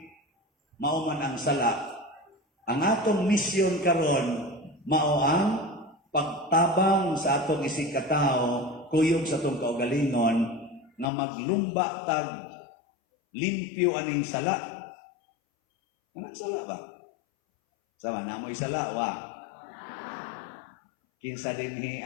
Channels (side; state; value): right; drops out; at 11.1 s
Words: mao man ang sala. Ang atong misyon karon mao ang pagtabang sa atong isig katao, kuyog sa atong kaugalingon nga maglumba tag limpyo aning sala. Anong sala ba? Sama na mo'y sala wa. Kinsa dinhi